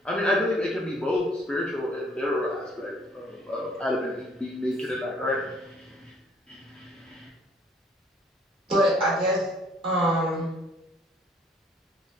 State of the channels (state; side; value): normal; both; correlation 0.60